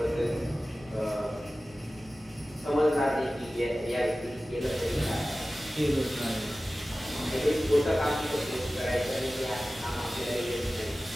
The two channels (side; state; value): both; normal; correlation 0.96